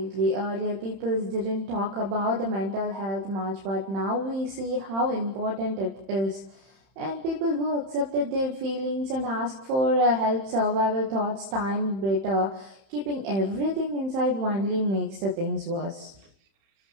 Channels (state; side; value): late; left; 31 ms